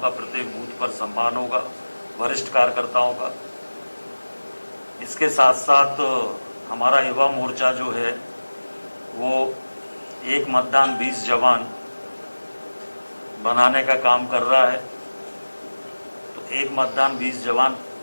प्रत्येक बूथ पर सम्मान होगा, वरिष्ठ कार्यकर्ताओं का। इसके साथ साथ हमारा युवा मोर्चा जो है वो एक मतदान 20 जवान बनाने का काम कर रहा है। तो एक मतदान 20 जवान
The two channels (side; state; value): both; inverted; correlation -1.00